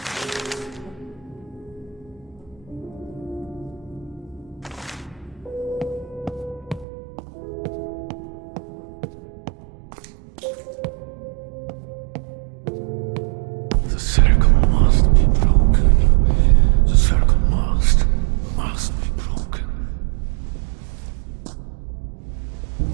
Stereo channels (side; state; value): left; drops out; at 6.9 s